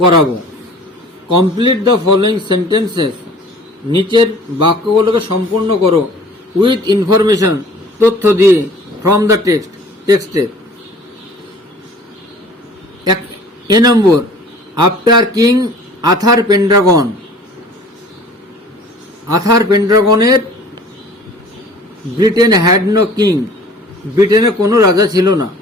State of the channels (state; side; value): normal; both; correlation 0.48